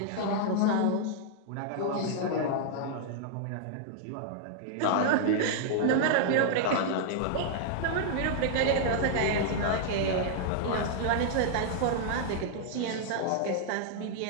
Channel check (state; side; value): different; both; correlation -0.01